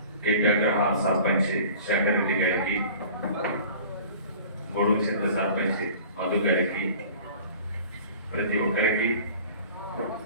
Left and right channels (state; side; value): inverted; both; correlation -0.44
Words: కేపీగ్రహాల సర్పంచ్ శంకర్ రెడ్డి గారికి, గొడుగు చింత సర్పంచ్ మధు గారికి, ప్రతి ఒక్కరికి